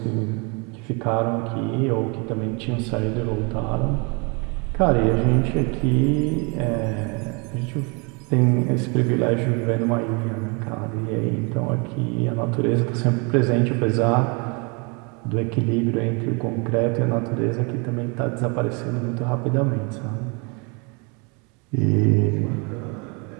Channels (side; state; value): left; quieter; 32.1 dB